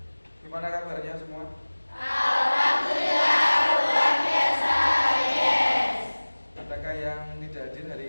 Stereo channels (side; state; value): both; inverted; correlation -1.00